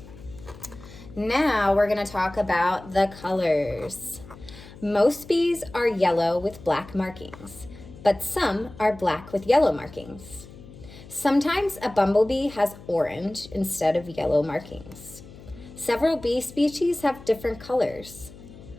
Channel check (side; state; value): left; noise; hum, 18 dB below the sound